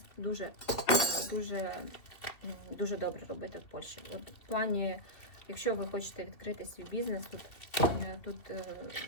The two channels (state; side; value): late; right; 2.7 ms